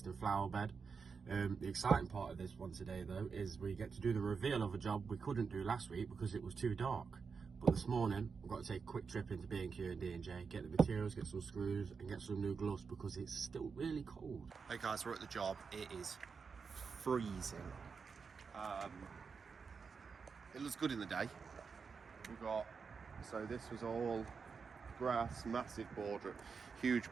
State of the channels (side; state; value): left; quieter; 5.5 dB